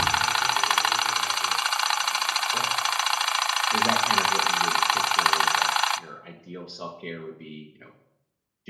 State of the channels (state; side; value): identical; both; correlation 1.00